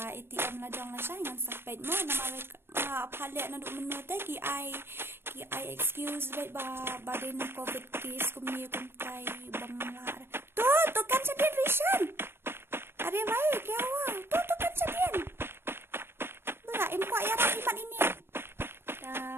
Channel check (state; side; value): late; left; 0.11 ms